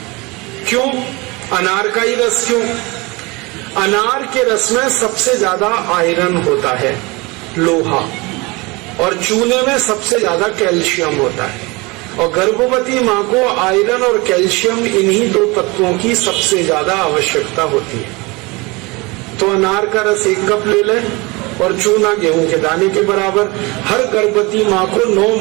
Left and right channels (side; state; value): left; quieter; 25.3 dB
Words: क्यों अनार का ही रस? क्यों? अनार के रस में सबसे ज्यादा आयरन होता है, लोहा, और चूने में सबसे ज्यादा कैल्शियम होता है। और गर्भवती माँ को आयरन और कैल्शियम, इन्हीं 2 तत्वों की सबसे ज्यादा आवश्यकता होती है। तो अनार का रस 1 कप ले लें और चूना गेहूं के दाने के बराबर हर गर्भवती माँ को 9